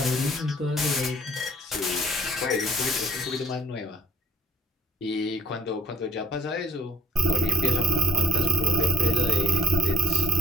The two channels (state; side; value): normal; both; correlation 0.58